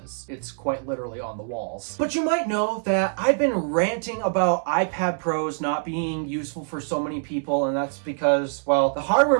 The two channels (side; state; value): left; silent; 62 dB below the other